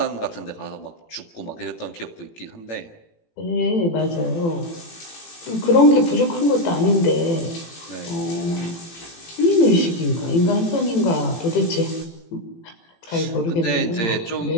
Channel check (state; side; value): late; right; 18 ms